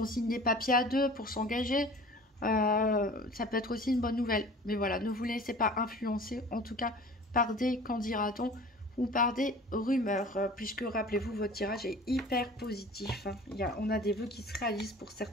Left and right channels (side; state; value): both; normal; correlation 0.43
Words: signe des papiers à 2 pour s'engager, ça peut être aussi une bonne nouvelle. Mais voilà, ne vous laissez pas influencer, en tout cas, par des qu'en dira-t-on ou par des rumeurs. Puisque, rappelez-vous, votre tirage est hyper positif. Hein. On a des vœux qui se réalisent pour